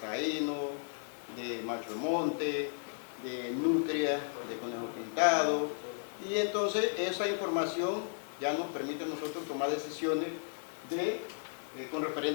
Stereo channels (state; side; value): silent; right; digital silence